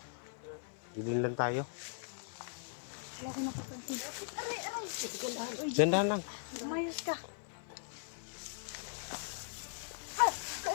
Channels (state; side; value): silent; right; 52 dB below the other